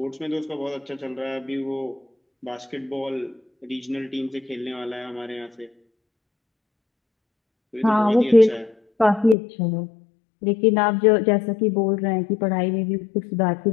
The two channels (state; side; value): drops out; right; at 9.3 s